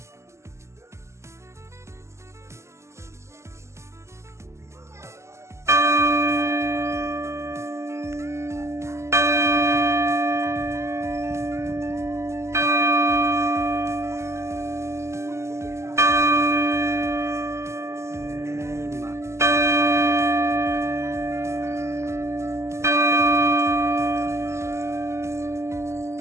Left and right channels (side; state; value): left; late; 0.13 ms